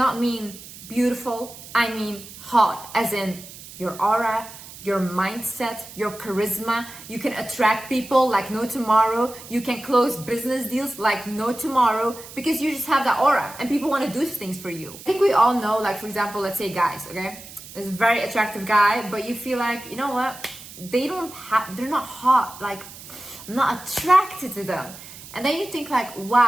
mean beautiful. I mean hot, as in your aura, your mindset, your charisma. You can attract people like no tomorrow. You can close business deals like no tomorrow because you just have that aura and people want to do things for you. I think we all know, like for example, let's say guys, okay? There's a very attractive guy, but you feel like, you know what? They're not hot. Like, I'm not attracted to them. And then you think like,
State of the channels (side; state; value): right; noise; hiss, 16 dB below the sound